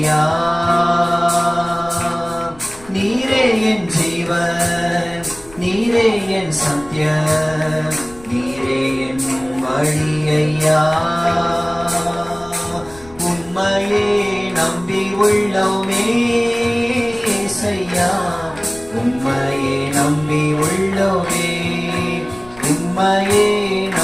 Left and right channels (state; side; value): noise; left; rumble, 21 dB below the sound